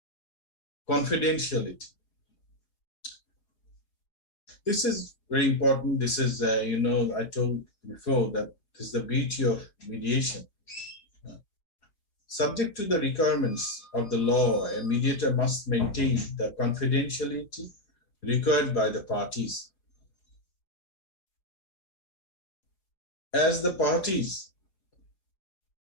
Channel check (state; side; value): late; right; 5.0 ms